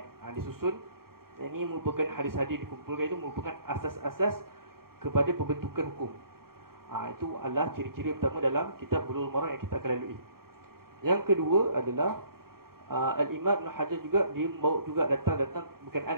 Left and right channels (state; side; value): late; left; 0.93 ms